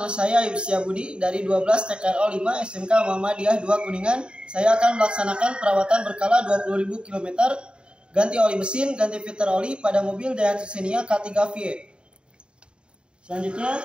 saya Ayub Setiabudi dari 12 TKRO 5 SMK Muhammadiyah 2 Kuningan. Saya akan melaksanakan perawatan berkala 20.000 km, ganti oli mesin, ganti filter oli pada mobil Daihatsu Xenia K3 VE. Selanjutnya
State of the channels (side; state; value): left; late; 0.052 ms